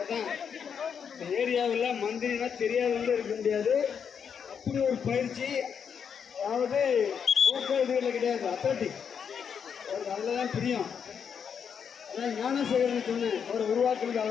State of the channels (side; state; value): right; quieter; 7.2 dB